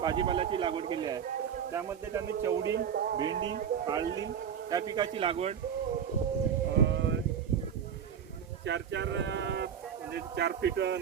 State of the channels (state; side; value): quieter; left; 8.1 dB